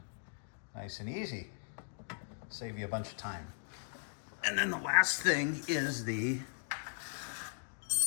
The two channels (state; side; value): silent; right; digital silence